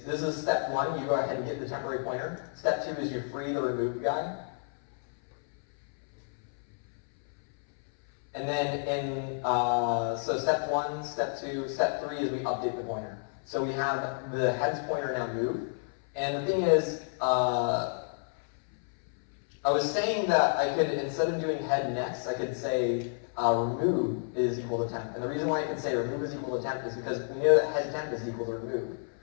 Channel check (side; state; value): right; silent; 58 dB below the other